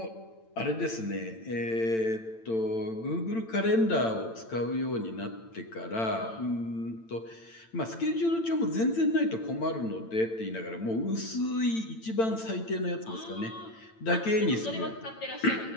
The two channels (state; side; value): late; right; 8.9 ms